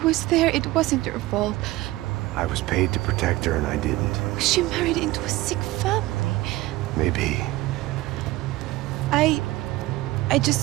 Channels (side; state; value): left; quieter; 18.4 dB